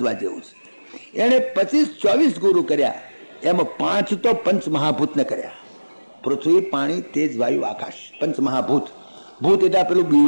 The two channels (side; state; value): both; inverted; correlation -1.00